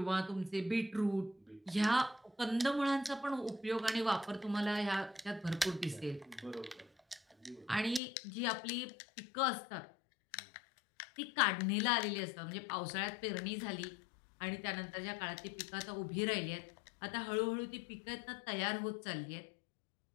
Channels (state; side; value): drops out; right; at 8.0 s